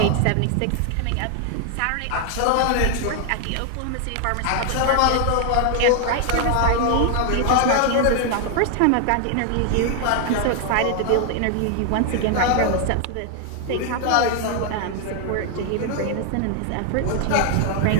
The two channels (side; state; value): both; different; correlation 0.00